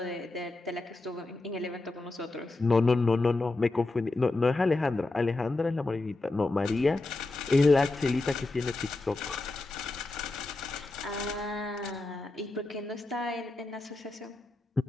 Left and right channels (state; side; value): quieter; right; 3.1 dB